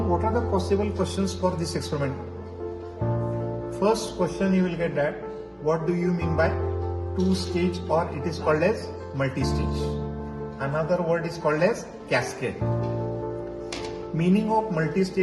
what are the possible questions for this experiment? First question you will get that, what do you mean by two-stage, or it is called as multi-stage. Another word is called as cascade. Meaning of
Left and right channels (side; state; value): both; identical; correlation 1.00